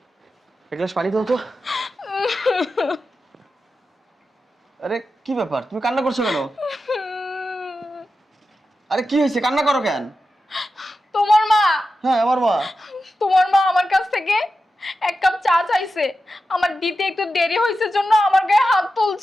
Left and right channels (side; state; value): both; normal; correlation 0.91